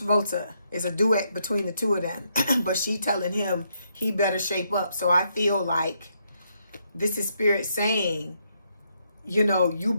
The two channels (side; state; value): both; inverted; correlation -0.77